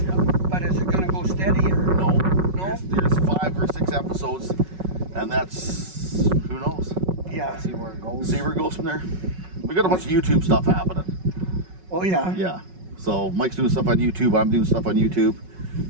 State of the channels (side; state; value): left; late; 5.4 ms